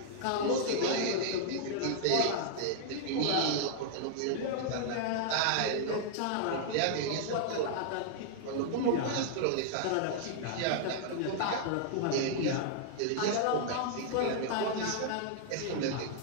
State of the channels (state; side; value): different; both; correlation -0.01